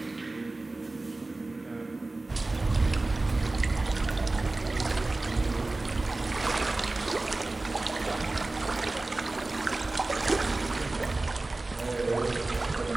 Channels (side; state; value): left; quieter; 3.1 dB